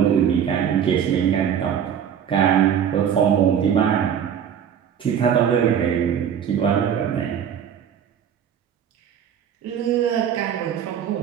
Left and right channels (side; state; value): left; quieter; 8.6 dB